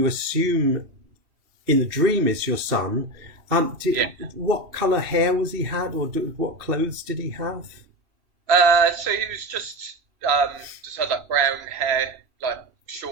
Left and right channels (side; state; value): left; late; 2.8 ms